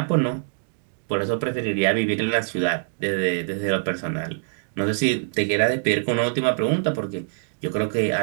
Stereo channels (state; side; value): silent; left; digital silence